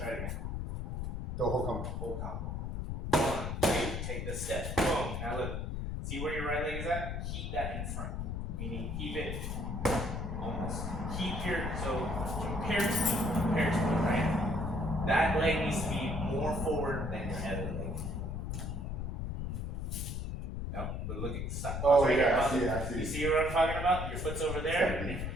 it again. The whole combo. Whole combo. 1, 2, take the step. Boom. Now look. See where your right leg is at? Keep that in front. Meaning keep it almost. Keep your, so compare to me, right? That leg needs to be more forward than your other leg. No, but look at the side. Oh, right yeah, here. I see. You see what I'm talking about? Your foot's over there.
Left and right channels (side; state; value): left; noise; rumble, 3 dB below the sound